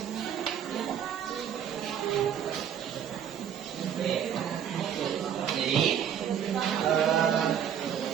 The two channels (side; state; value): left; quieter; 9.0 dB